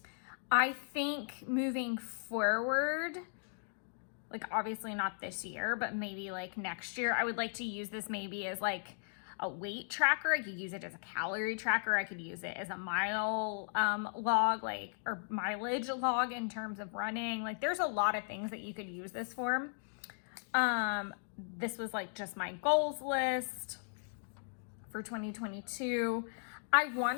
I think moving forward, like obviously not this year, but maybe like next year, I would like to use this maybe as like a weight tracker. I could use it as a calorie tracker. I could use it as a mile log, or mileage log in terms of running. Like there's a lot of things that you could use this for. This was like just my goals list for 2022. I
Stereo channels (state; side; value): silent; right; digital silence